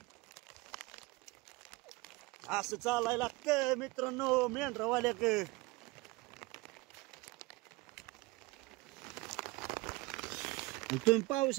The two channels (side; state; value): left; quieter; 23.1 dB